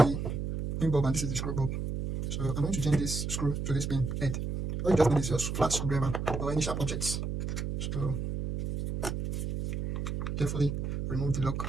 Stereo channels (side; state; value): right; noise; hum, 3 dB below the sound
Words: pin bulb and this is the screw bulb. So I'm going to change this screw to this pin head. All you just need is your flat screwdriver or any sharp objects. So carefully remove the